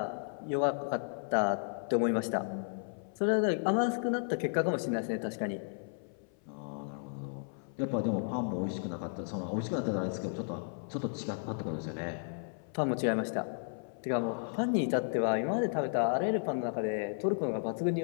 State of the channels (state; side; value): silent; right; 55 dB below the other